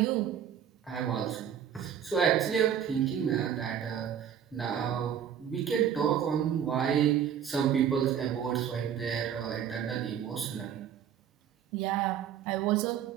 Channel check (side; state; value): left; quieter; 9.0 dB